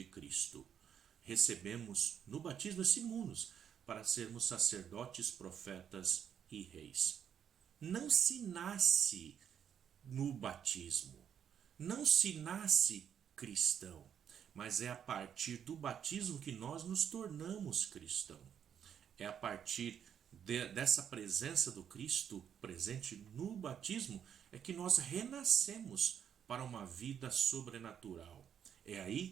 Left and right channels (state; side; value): quieter; left; 8.5 dB